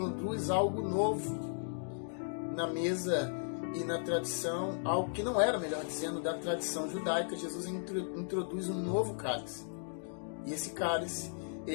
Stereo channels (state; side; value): silent; right; digital silence